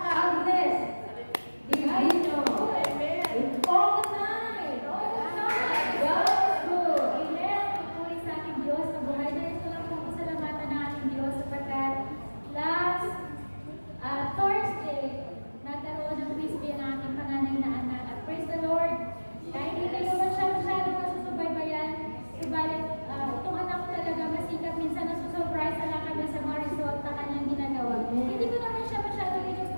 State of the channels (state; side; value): inverted; both; correlation -1.00